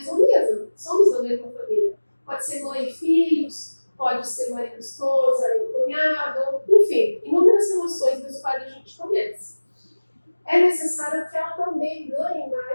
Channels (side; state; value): both; inverted; correlation -1.00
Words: mesa. Somos da mesma família. Pode ser mãe e filhos, pode ser marido e esposa, e cunhado, enfim, inúmeras relações das quais a gente conhece. É necessário que ela também ganhe